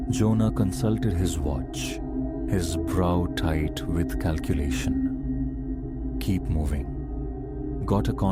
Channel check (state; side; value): identical; both; correlation 1.00